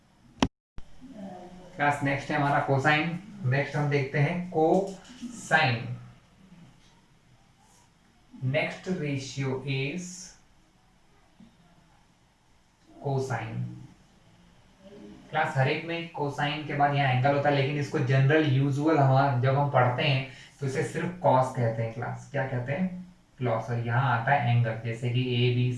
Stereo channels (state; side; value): identical; both; correlation 1.00